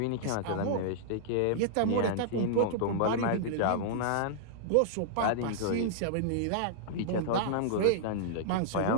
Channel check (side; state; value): both; different; correlation -0.01